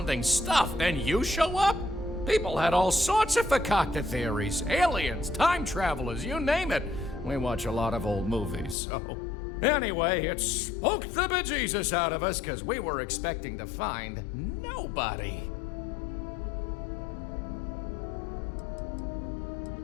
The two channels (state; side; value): drops out; right; at 8.8 s